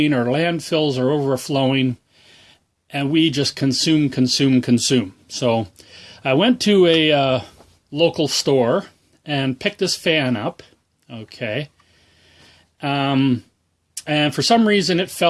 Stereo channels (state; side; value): identical; both; correlation 1.00